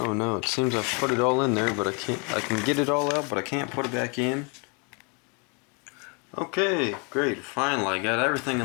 no, it seems I've put it all in there, but I can get it all out, but I can't put it back in. Okay, great. Finally, I got everything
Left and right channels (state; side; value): quieter; right; 33.8 dB